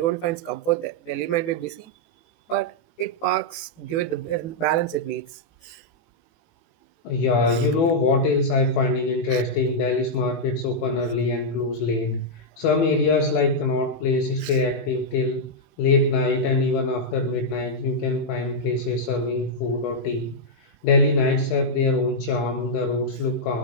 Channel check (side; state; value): right; late; 18 ms